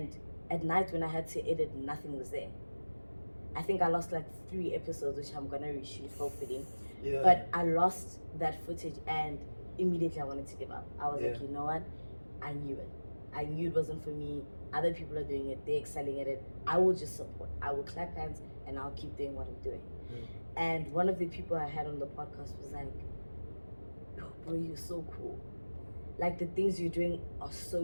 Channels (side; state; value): both; inverted; correlation -1.00